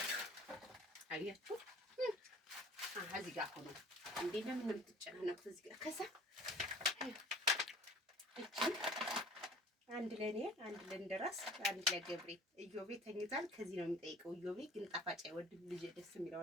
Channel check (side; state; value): both; normal; correlation 0.48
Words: አያችሁ እዚህ ጋር ሆኖ እንዴ ለምን የምትጨናነቁት እዚህ ጋር? ከዛ አንድ ለኔ አንድ ለእንደራስ አንድ ለገብሬ። እዮቤ ተኝቷል። ከዚህ ነው የሚጠይቀው። እዮቤ ግን ጣፋጭ አይወድም። ልጅ ደስ የሚለው